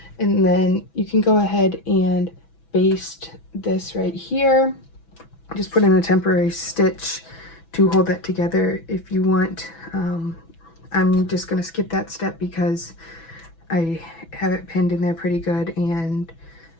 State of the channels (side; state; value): right; late; 6.1 ms